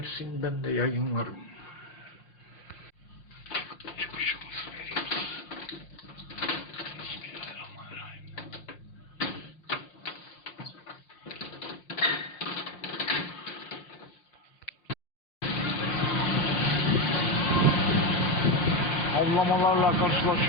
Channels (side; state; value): right; late; 5.6 ms